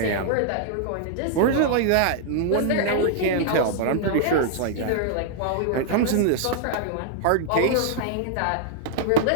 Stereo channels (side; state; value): both; different; correlation -0.01